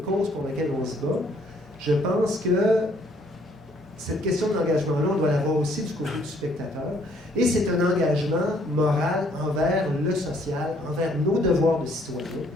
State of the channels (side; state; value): both; normal; correlation 0.64